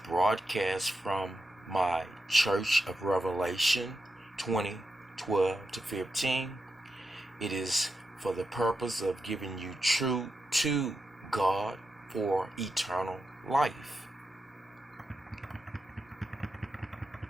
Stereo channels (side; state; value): both; normal; correlation 0.88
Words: broadcast from my Church of Revelation 2012 to 15. It is for the purpose of giving you truth to God for eternal life.